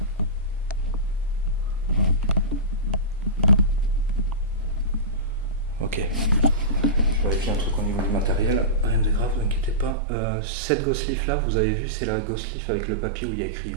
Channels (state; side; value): drops out; left; at 10.0 s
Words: Ok. Je vérifie un truc au niveau du matériel. Rien de grave, ne vous inquiétez pas. Cette Ghost Leaf là, vous avez vu, c'est la Ghost Leaf avec le papier où il y a écrit